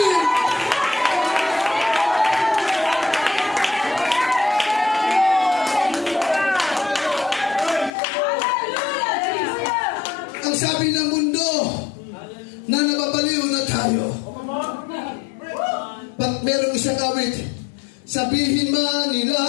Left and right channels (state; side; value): drops out; right; at 7.9 s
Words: Ang sabi ng mundo na nababaliw na tayo. But merong isang awit, sabihin man nila